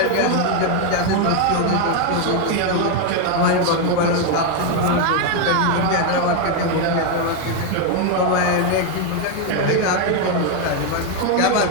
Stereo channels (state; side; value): different; both; correlation 0.01